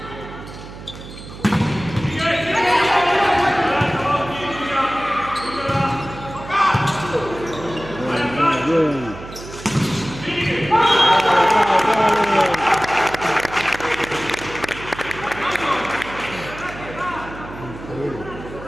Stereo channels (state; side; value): noise; right; hum, 14 dB below the sound